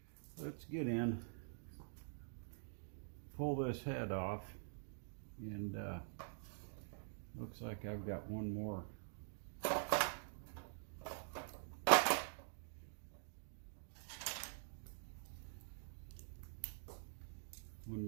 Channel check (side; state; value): left; silent; digital silence